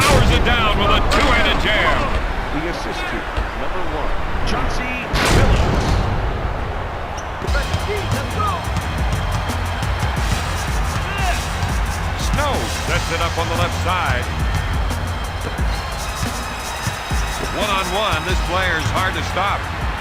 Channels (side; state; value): both; identical; correlation 1.00